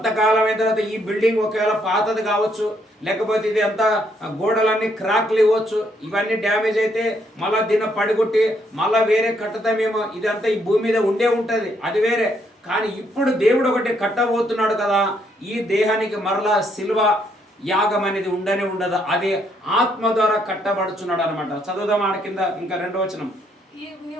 అయిన తర్వాత ఈ బిల్డింగ్ ఒకవేళ పాతది కావచ్చు, లేకపోతే ఇది అంతా గోడలన్నీ క్రాక్లు ఇవ్వచ్చు, ఇవన్నీ డ్యామేజ్ అయితే మళ్ళీ దీన్ని పడిగొట్టి మళ్ళీ వేరే కట్టుతామేమో, ఇదంతా ఈ భూమి మీద ఉండే ఉంటుంది, అది వేరే. కానీ ఇప్పుడు దేవుడు ఒకటి కట్టబోతున్నాడు కదా, ఈ దేహానికి మరలా సిల్వ యాగం అనేది ఉండనే ఉండదు, అది ఆత్మ ద్వారా కట్టబడుచున్నాడు అనమాట. చదువుదాం ఆడ కింద ఇంకా 2వ వచనం.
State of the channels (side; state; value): both; normal; correlation 0.72